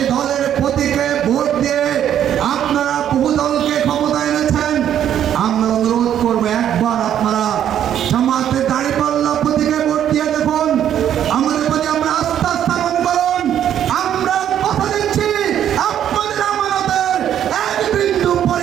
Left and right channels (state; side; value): quieter; left; 10.2 dB